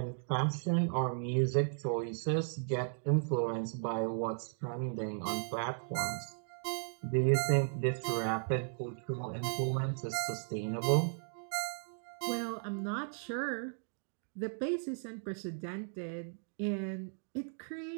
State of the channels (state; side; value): silent; left; digital silence